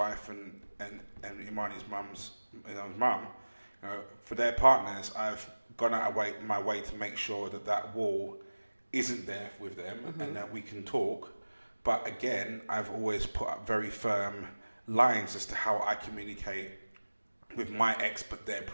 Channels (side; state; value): both; inverted; correlation -1.00